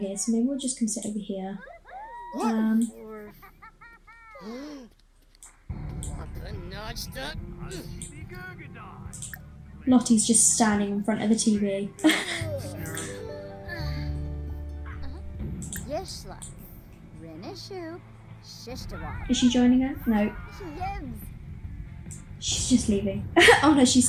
so maybe we'll just come sit over here. Lottie's just standing in front of the TV. Is she joining her? No. She's just leaving. Oh no, she's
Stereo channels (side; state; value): both; identical; correlation 1.00